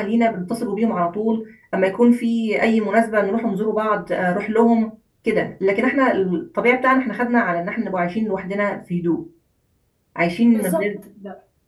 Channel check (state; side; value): identical; both; correlation 1.00